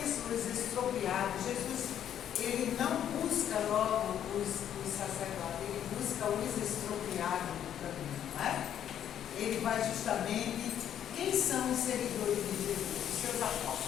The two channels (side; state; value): right; quieter; 10.0 dB